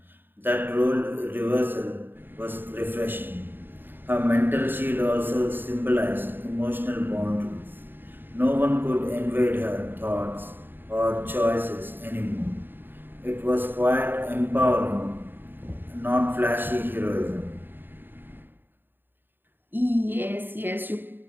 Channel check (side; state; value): left; late; 0.095 ms